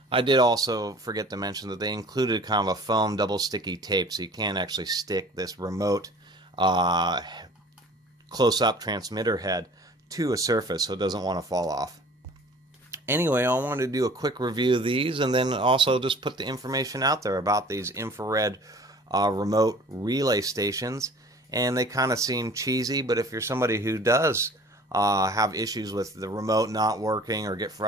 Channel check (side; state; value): both; normal; correlation 0.48